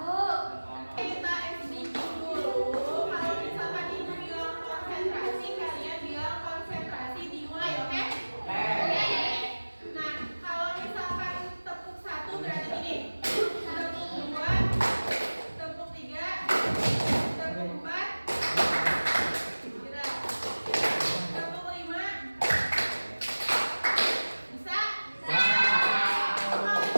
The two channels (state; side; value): inverted; both; correlation -1.00